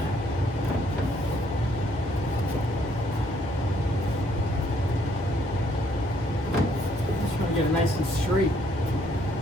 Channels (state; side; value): normal; both; correlation 0.67